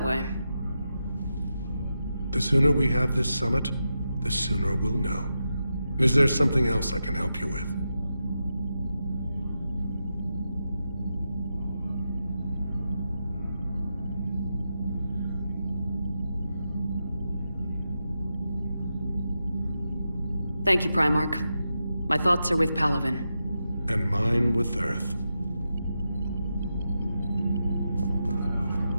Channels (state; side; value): inverted; both; correlation -0.88